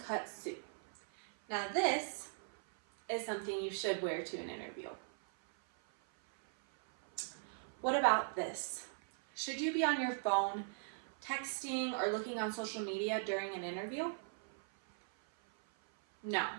suit. Now this is something you should wear to an interview. What about this? Should you be on your phone, texting, or looking on social media during an interview? No.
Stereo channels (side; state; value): left; silent; 52 dB below the other